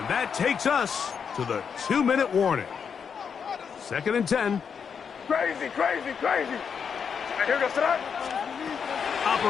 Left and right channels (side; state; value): right; quieter; 6.7 dB